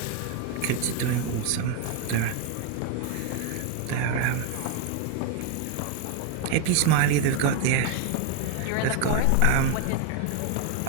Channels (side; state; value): both; different; correlation 0.01